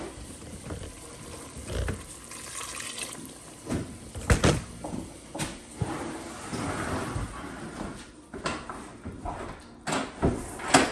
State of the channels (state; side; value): identical; both; correlation 1.00